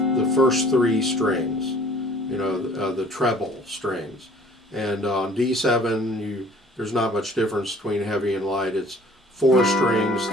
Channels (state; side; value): normal; both; correlation 0.52